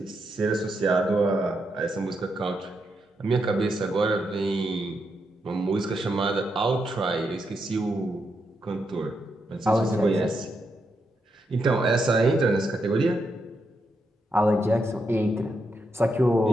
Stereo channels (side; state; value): both; normal; correlation 0.82